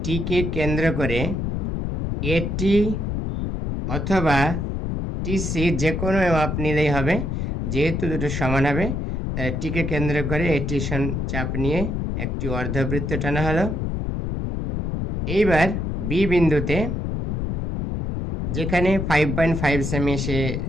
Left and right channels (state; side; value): noise; left; rumble, 2 dB below the sound